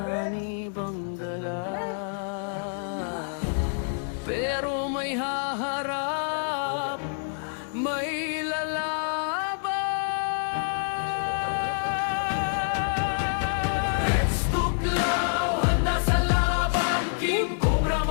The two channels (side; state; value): right; silent; digital silence